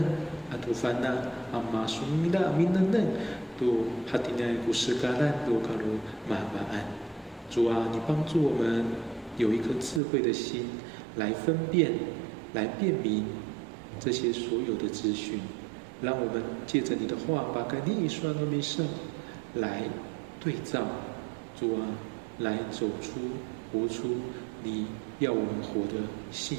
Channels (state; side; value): drops out; left; at 10.0 s